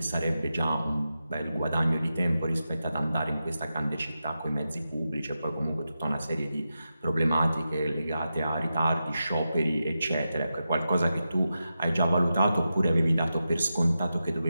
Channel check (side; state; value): both; inverted; correlation -0.90